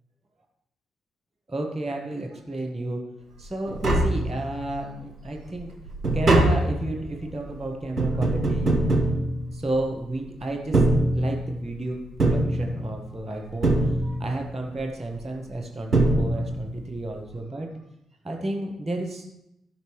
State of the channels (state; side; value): normal; both; correlation 0.81